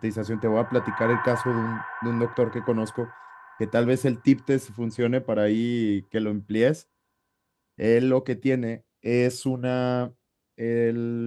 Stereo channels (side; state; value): both; identical; correlation 1.00